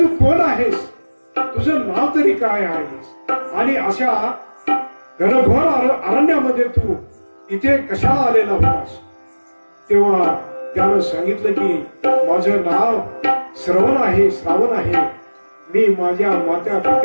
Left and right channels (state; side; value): inverted; both; correlation -1.00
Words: कोण आहेस, तुझं नाव तरी काय आहेस, आणि अशा घनघोर अरण्यामध्ये तू इथे कशाला आलेला होतास. तेव्हा त्यानं सांगितलं की माझं नाव श्रावण आहे. मी माझ्या मात्या